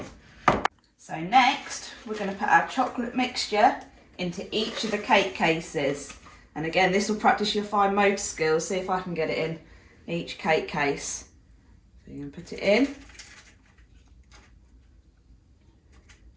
So next, we're going to put our chocolate mixture into each of the cake cases. And again, this will practice your fine motor skills. See if I can get it in each cake case. So you're going to put it in.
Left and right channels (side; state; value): both; identical; correlation 1.00